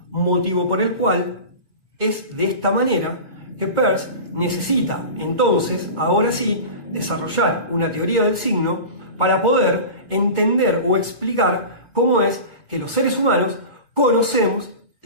Motivo por el cual es de esta manera que Peirce necesita entonces, ahora sí, desarrollar una teoría del signo para poder entender o explicar cómo es que los seres humanos conocemos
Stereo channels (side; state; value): left; late; 1.8 ms